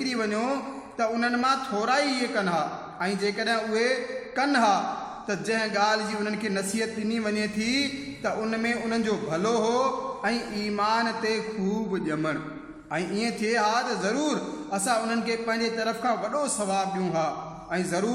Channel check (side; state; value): both; identical; correlation 1.00